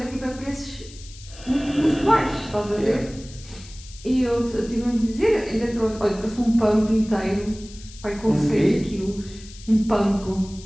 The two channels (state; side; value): noise; left; hiss, 19 dB below the sound